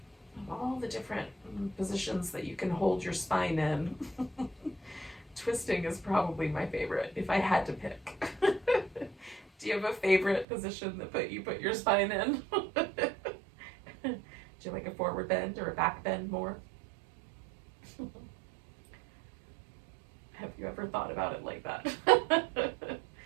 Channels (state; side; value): drops out; left; at 10.5 s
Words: All the different positions that you can hold your spine in. Twisting is probably my favorite, if I had to pick. Do you have a favorite position that you put your spine in? Do you like a forward bend or a back bend more? Have you ever thought about it like that?